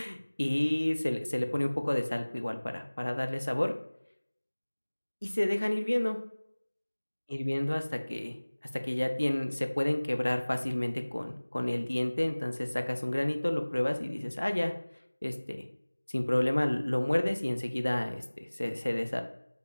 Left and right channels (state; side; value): inverted; both; correlation -1.00